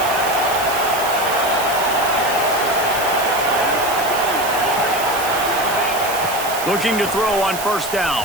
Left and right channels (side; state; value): right; noise; hiss, 8 dB below the sound